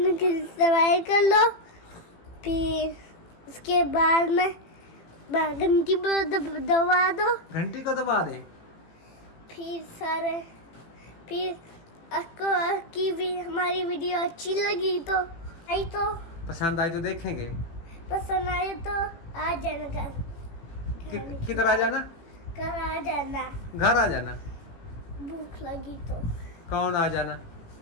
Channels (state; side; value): late; right; 18 ms